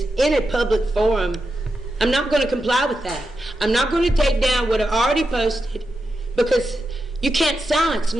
in a public forum. I'm not going to comply with that. I'm not going to take down what I already posted, because you can't silence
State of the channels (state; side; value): normal; both; correlation 0.88